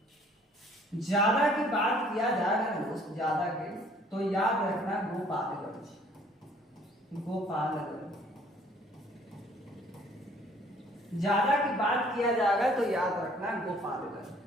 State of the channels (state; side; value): normal; both; correlation 0.58